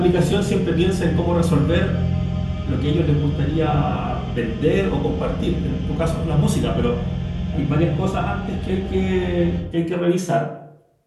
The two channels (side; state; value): both; identical; correlation 1.00